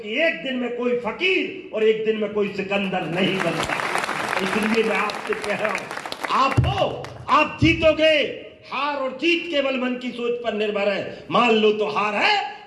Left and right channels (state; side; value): identical; both; correlation 1.00